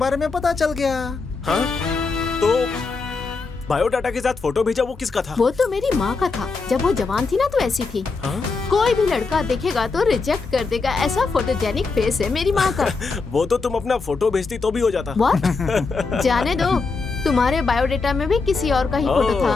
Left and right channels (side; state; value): right; quieter; 4.3 dB